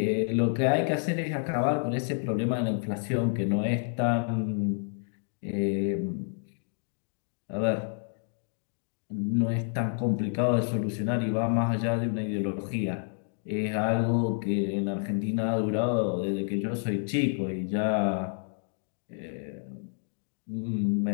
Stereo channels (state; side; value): silent; right; 58 dB below the other